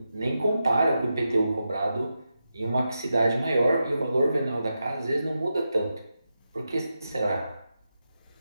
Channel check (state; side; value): inverted; both; correlation -0.88